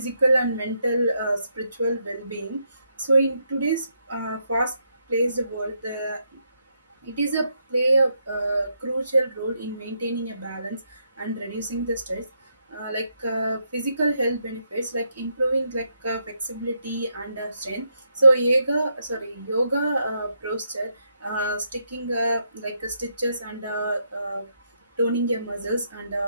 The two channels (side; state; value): both; inverted; correlation -0.78